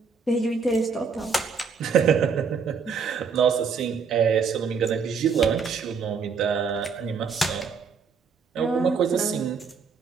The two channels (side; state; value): left; quieter; 5.6 dB